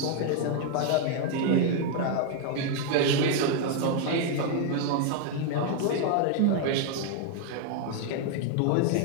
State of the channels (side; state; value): both; different; correlation 0.00